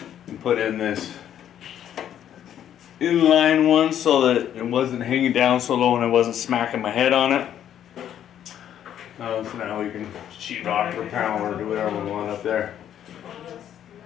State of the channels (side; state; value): right; quieter; 10.3 dB